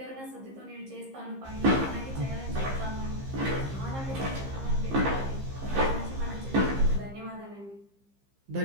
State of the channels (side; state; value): left; late; 15 ms